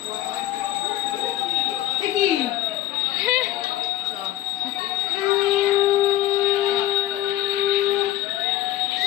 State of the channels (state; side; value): quieter; right; 14.4 dB